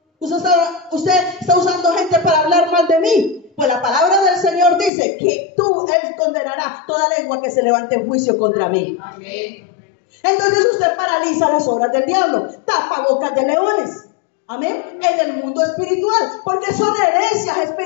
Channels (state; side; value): drops out; right; at 4.9 s